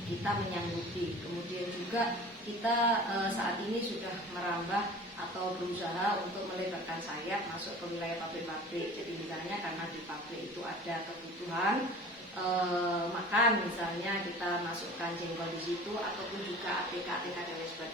kita menyanggupi. Kemudian juga kita saat ini sudah merambah atau berusaha untuk melebarkan sayap masuk ke wilayah pabrik-pabrik. Jadi misalnya karena di pabrik itu ada kebutuhan makan, misalnya kita masukkan jengkol di situ ataupun juga ATK dan lain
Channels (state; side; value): normal; both; correlation 0.41